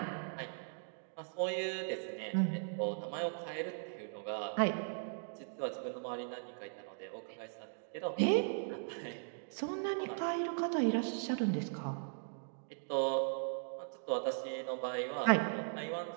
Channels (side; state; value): left; silent; digital silence